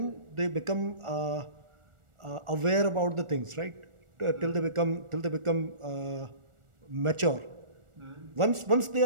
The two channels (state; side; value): late; left; 1.4 ms